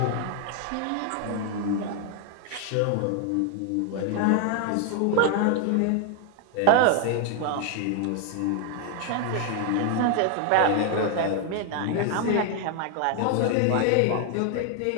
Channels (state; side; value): different; both; correlation 0.00